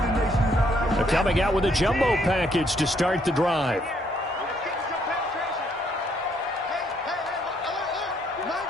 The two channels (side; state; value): both; normal; correlation 0.69